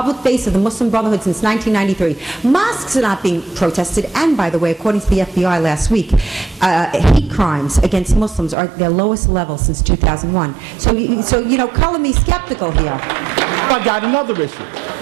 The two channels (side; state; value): left; drops out; at 8.6 s